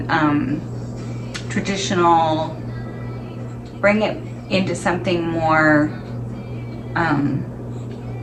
traditional. Bring it into something more.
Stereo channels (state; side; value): identical; both; correlation 1.00